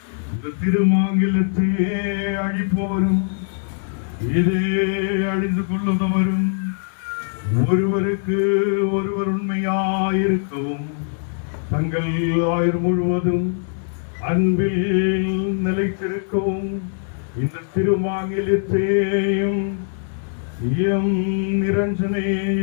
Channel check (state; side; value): silent; right; digital silence